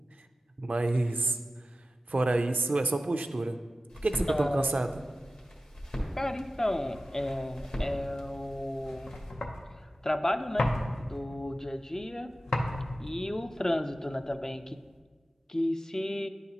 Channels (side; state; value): both; normal; correlation 0.94